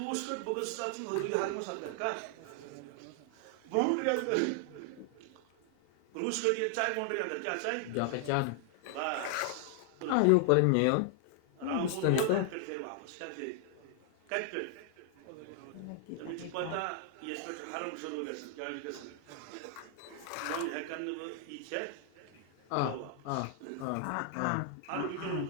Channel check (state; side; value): different; both; correlation 0.00